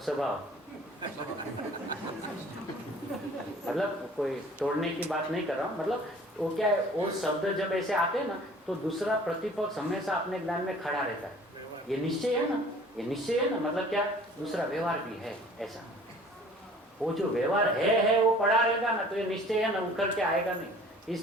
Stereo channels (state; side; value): normal; both; correlation 0.50